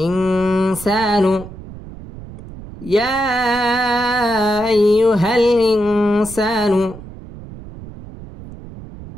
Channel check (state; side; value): noise; right; rumble, 15 dB below the sound